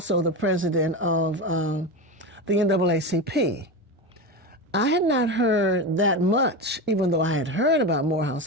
the president of the NAACP. I had not heard that much, even though I had heard about Morehouse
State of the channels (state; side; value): normal; both; correlation 0.21